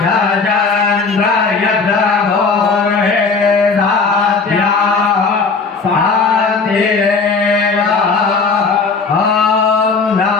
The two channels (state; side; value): quieter; right; 4.6 dB